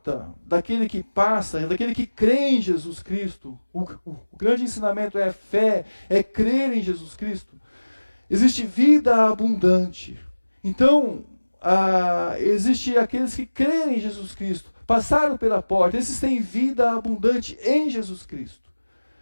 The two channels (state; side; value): inverted; both; correlation -1.00